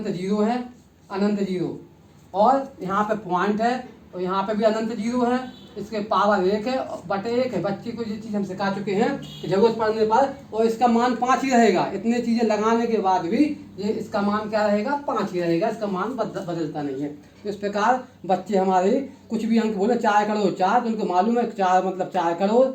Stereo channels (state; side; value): identical; both; correlation 1.00